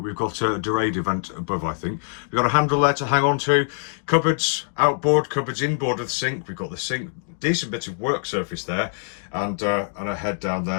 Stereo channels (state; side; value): silent; right; 63 dB below the other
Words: got a Dorado vent above, I think. We've got a handle there to hang on to. Cupboards outboard, cupboards inboard of the sink. We've got the sink, decent bit of work surface there, and a head down